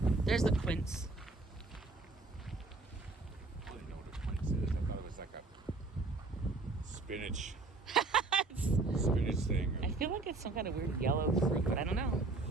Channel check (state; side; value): quieter; left; 3.5 dB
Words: There's the quince. I don't know what a quince is. I thought it was like a spinach. Spinach thing. I feel like it's some kind of weird yellow fruit, but I don't know.